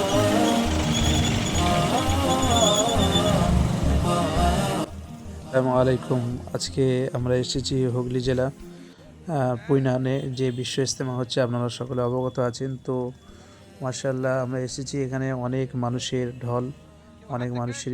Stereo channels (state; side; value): identical; both; correlation 1.00